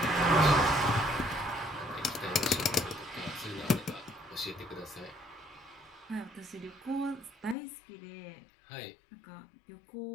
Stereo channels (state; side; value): drops out; right; at 7.6 s